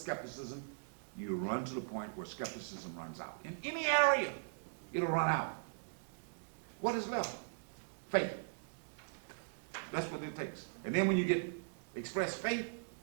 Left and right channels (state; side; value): silent; left; digital silence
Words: you run to the point where skepticism runs out. In any area, it'll run out. What is left? Faith. That's what it takes. And then when you get express faith,